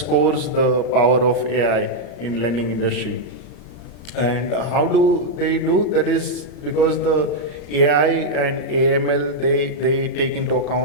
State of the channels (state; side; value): late; right; 34 ms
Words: the power of AI in lending industry. And how do they do? That is because the AI and AML, they take into